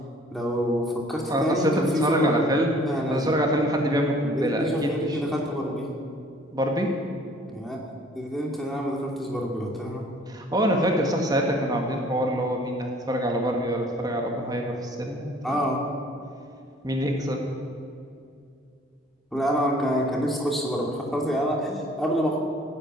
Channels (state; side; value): normal; both; correlation 0.55